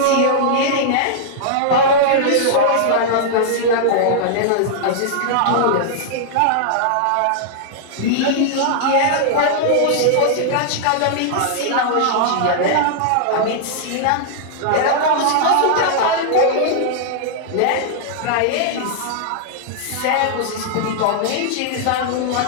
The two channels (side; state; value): both; different; correlation -0.01